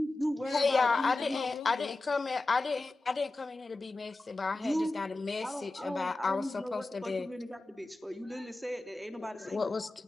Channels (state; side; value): quieter; right; 3.1 dB